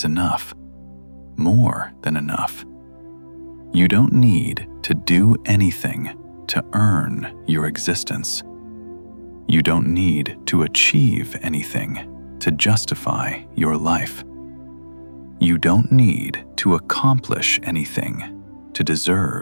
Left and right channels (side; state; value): both; inverted; correlation -1.00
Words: enough, more than enough. You don't need to do anything to earn your existence. You don't need to achieve anything to justify your life. You don't need to accomplish anything to